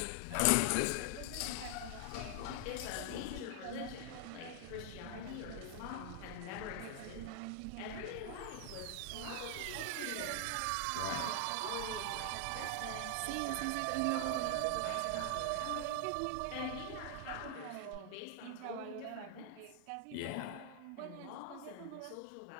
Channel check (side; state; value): both; different; correlation 0.00